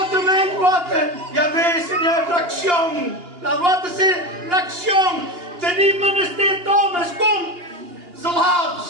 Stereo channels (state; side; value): late; left; 2.8 ms